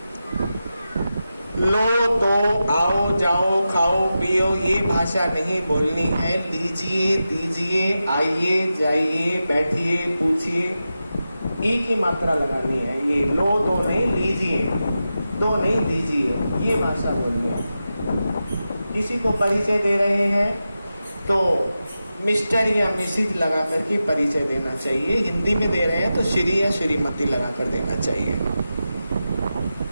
लो तो आओ जाओ खाओ पियो ये भाषा नहीं बोलनी है। लीजिए दीजिए, आइए जाइए, बैठिए पूछिए, ई की मात्रा लगानी है। ये लो तो नहीं, लीजिए, दो नहीं दीजिए, ये भाषा बोलनी है। किसी को परिचय दे रहे हैं तो मिस्टर या मिसिज लगा करके परिचय देना चाहिए। हिंदी में दे रहे हैं तो श्री या श्रीमती लगा कर देना चाहिए।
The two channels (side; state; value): both; inverted; correlation -0.91